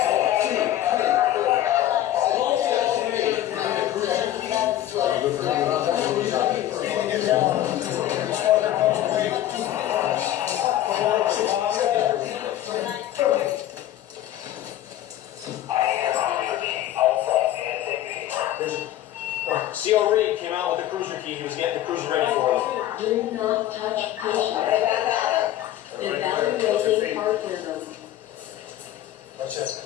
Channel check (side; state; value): right; quieter; 13.0 dB